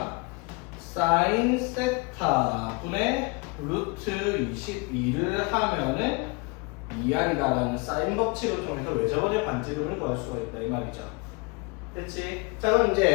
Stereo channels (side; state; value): right; quieter; 29.0 dB